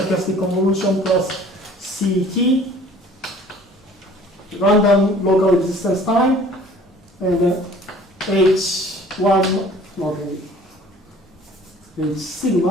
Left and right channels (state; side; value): normal; both; correlation 0.51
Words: convolution plus CT, random local existence time, and H1, okay, is